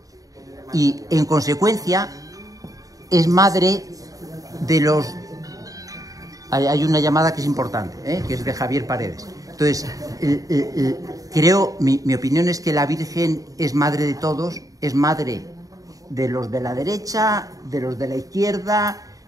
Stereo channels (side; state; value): left; late; 0.17 ms